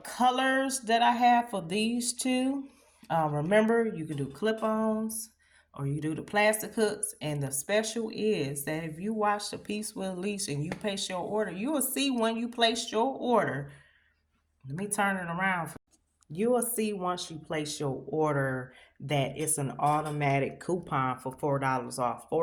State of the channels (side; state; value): both; identical; correlation 1.00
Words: that I have for these two. Remember, you can do clip-ons or you do the plastic hooks. And the special is that if you watch the piece with Lisa and you place your order, you will see when you place your order. Let me turn it around. You will see once you place your order that it's an automatic coupon for $4 off.